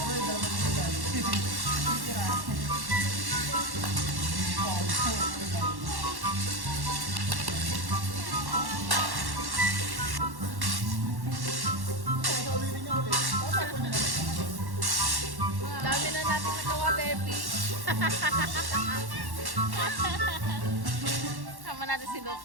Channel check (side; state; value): left; late; 1.1 ms